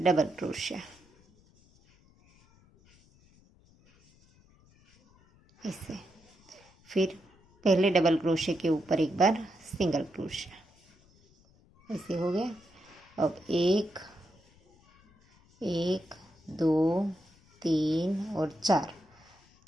क्रोशिया ऐसे। फिर पहले डबल क्रोशे के ऊपर एक बार सिंगल क्रोशिया, ऐसे हो गया। अब 1 1 2 3 और 4।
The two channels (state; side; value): noise; left; rumble, 30 dB below the sound